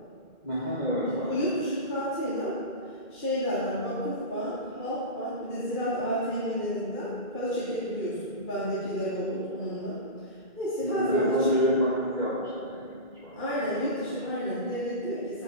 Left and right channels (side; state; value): right; late; 2.1 ms